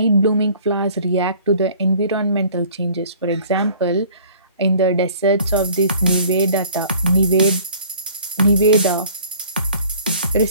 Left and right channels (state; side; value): inverted; both; correlation -0.52